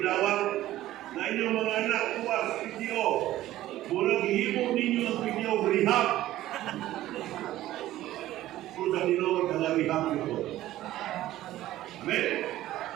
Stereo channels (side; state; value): left; quieter; 14.7 dB